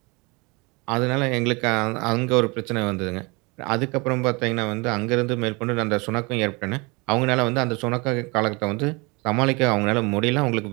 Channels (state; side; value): quieter; left; 27.7 dB